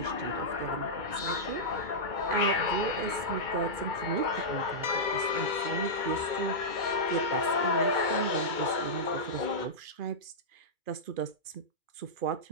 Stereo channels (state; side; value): late; left; 2.5 ms